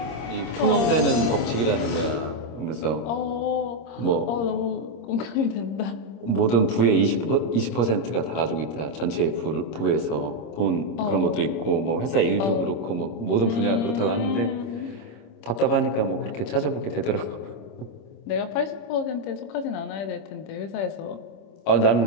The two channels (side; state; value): right; late; 26 ms